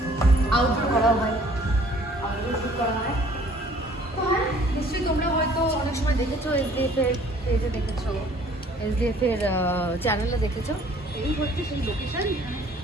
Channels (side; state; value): both; normal; correlation 0.56